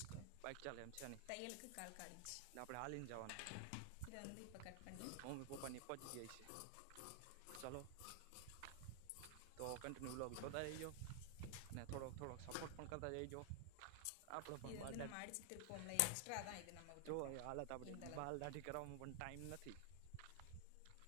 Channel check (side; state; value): both; different; correlation 0.00